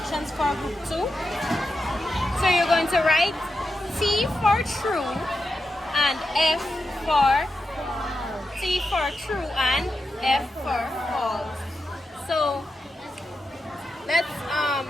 for group 2. So you're going to write T for true and F for true and F for false. So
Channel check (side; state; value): both; normal; correlation 0.88